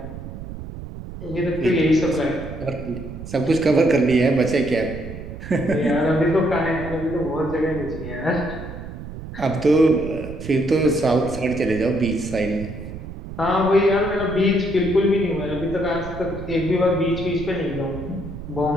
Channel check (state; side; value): noise; right; rumble, 11 dB below the sound